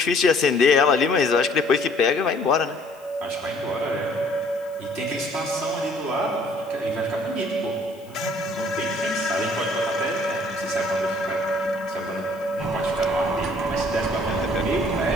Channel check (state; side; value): noise; left; hiss, 27 dB below the sound